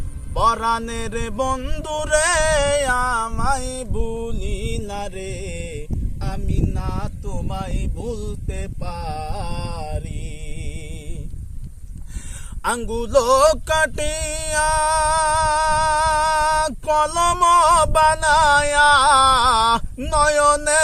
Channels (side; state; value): both; identical; correlation 1.00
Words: পরাণের বন্ধু রে আমায় ভুলিলা রে, আমি না তোমায় ভুলতে পারি। আঙ্গুলো কাটিয়া কলম বানায়া,